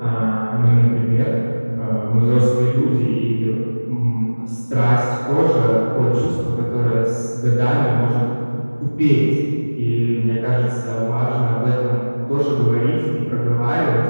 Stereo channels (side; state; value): both; inverted; correlation -1.00